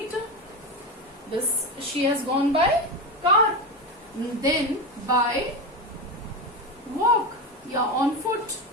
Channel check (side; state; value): both; normal; correlation 0.18